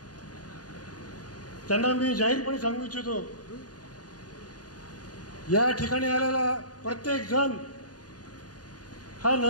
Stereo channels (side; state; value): right; late; 0.69 ms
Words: त्यांना मी जाहीरपणे सांगू इच्छितो या ठिकाणी आलेला प्रत्येक जण हा